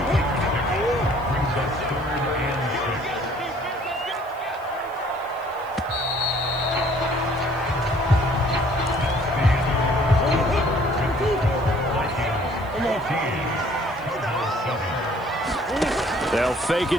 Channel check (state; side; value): noise; right; hiss, 27 dB below the sound